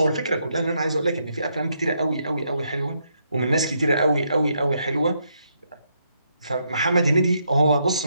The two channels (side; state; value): both; inverted; correlation -0.77